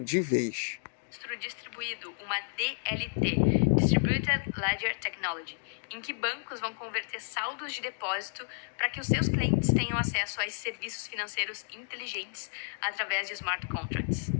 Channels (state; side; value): silent; right; digital silence